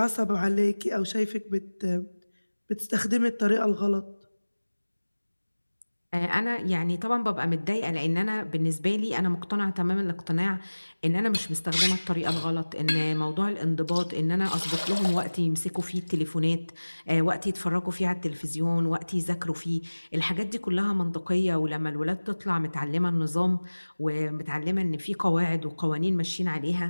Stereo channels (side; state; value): both; inverted; correlation -1.00